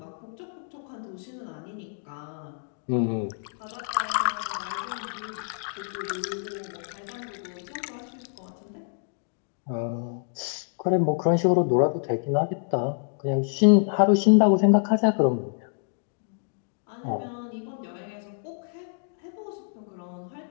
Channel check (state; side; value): silent; right; 60 dB below the other